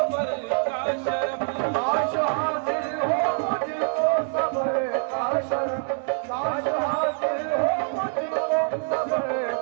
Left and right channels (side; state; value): left; silent; 57 dB below the other